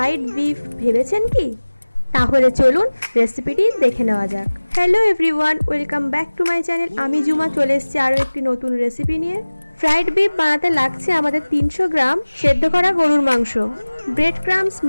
বিফ ভেবেছেন কি? তাহলে চলুন রেসিপিটি দেখে নেওয়া যাক। Hello everyone, welcome back to my channel. আমি জুমা চলে এসেছি আরও একটি নতুন রেসিপি নিয়ে। ফ্রাইড বিফ বানাতে লাগছে আমাদের 300 গ্রাম সেদ্ধ করা গরুর মাংস, ব্রেড ক্রাম্বস,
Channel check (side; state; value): both; inverted; correlation -1.00